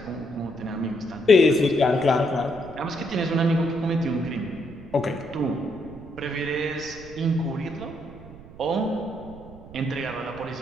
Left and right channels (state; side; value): noise; right; rumble, 17 dB below the sound